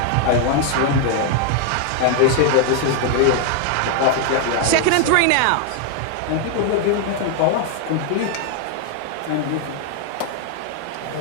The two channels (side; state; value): both; different; correlation 0.00